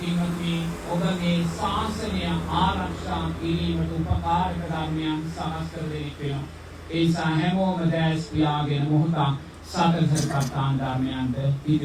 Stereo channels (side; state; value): both; identical; correlation 1.00